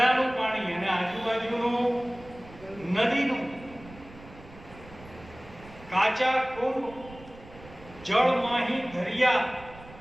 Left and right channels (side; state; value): right; noise; rumble, 19 dB below the sound